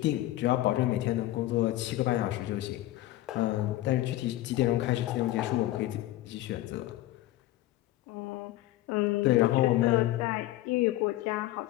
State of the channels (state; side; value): quieter; right; 15.7 dB